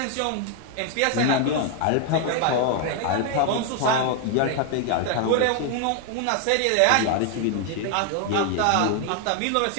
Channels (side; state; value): both; different; correlation 0.00